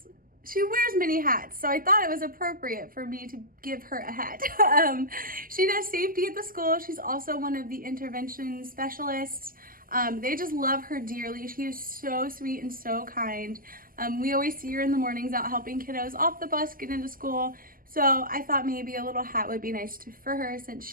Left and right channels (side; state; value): left; late; 0.41 ms